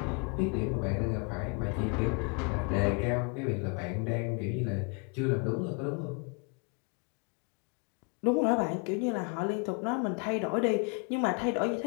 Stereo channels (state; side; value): quieter; right; 34.3 dB